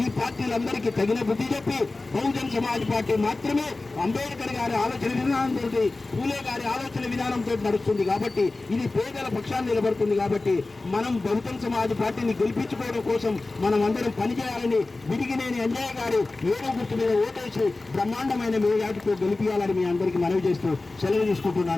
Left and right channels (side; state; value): right; quieter; 3.3 dB